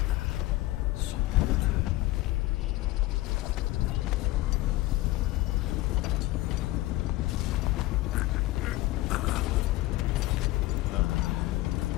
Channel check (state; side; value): quieter; right; 17.9 dB